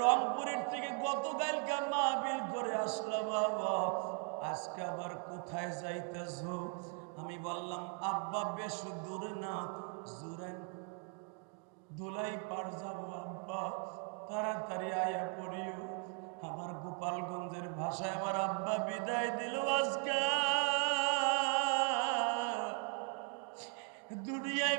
থেকে গতকালকে মাহফিল করে আসলাম বাবা, আজকে আবার কোথায় যাইতেছ? আমি বললাম আব্বা বেশ দূরে না, জুরাইন ধুলাই পার যাবো আব্বা, তাড়াতাড়ি আয়া পড়িও। আমার গোপালগঞ্জের ভাষায় আমার আব্বা বিদায় দিল আজকে। দুনিয়ায়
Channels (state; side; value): quieter; left; 38.2 dB